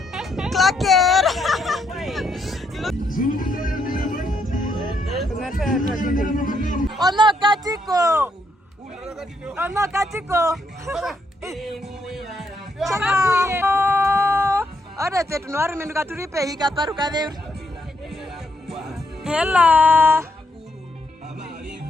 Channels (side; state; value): both; normal; correlation 0.76